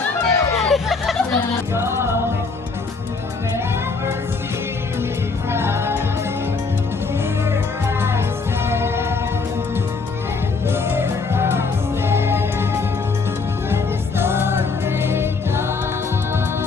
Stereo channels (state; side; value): quieter; right; 4.4 dB